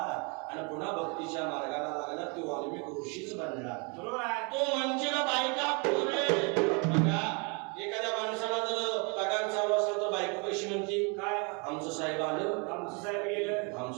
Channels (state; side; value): quieter; left; 33.4 dB